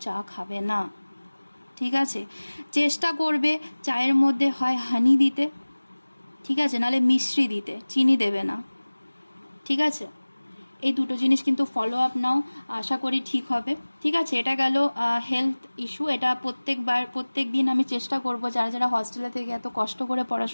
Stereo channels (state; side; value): inverted; both; correlation -1.00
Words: চা খাবে না, ঠিক আছে। চেষ্টা করবে চায়ের মধ্যে হয় হানি দিতে, ঠিক আছে, নাহলে মিশ্রি দিতে, চিনি দেবে না, ঠিক আছে। এই দুটো জিনিস কিন্তু ফলো আপ নাও, আশা করি ঠিক হবে, ঠিক আছে। এটা গেল হেলথ ইস্যু। এটা প্রত্যেক দিন আমি চেষ্টা করব যারা হস্টেলে থেকে এত কষ্ট করে